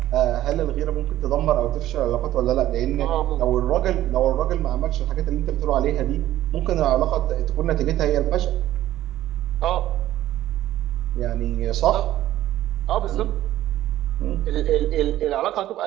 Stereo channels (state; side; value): quieter; left; 13.7 dB